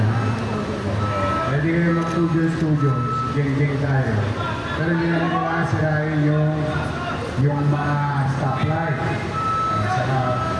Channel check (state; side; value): identical; both; correlation 1.00